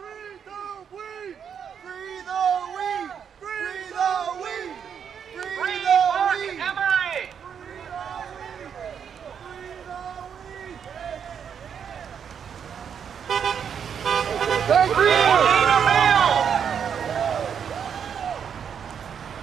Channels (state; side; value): quieter; left; 7.6 dB